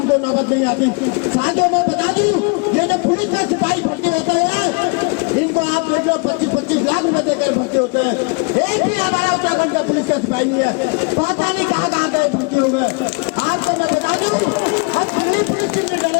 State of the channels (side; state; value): right; quieter; 30.7 dB